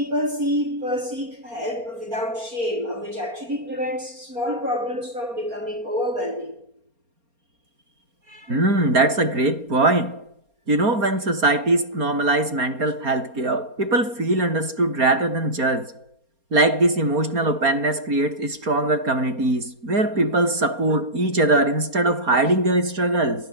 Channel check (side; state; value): left; late; 4.3 ms